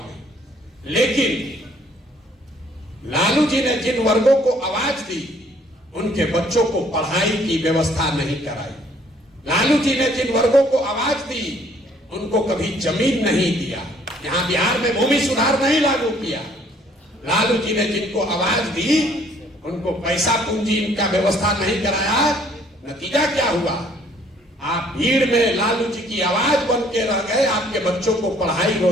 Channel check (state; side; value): normal; both; correlation 0.61